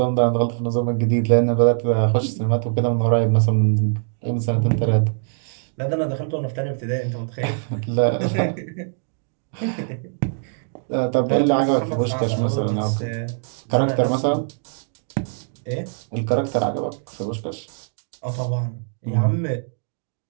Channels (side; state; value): left; silent; digital silence